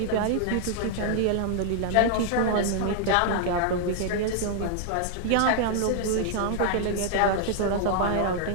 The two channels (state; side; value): different; both; correlation 0.00